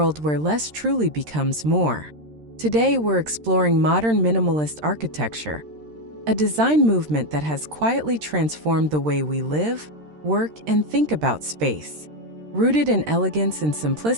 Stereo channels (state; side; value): late; left; 13 ms